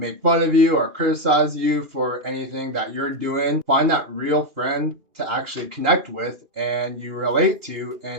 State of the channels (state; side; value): late; left; 2.8 ms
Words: fun of you or criticize you for anything that you're doing. Find that real friend to actually connect with and you relate to,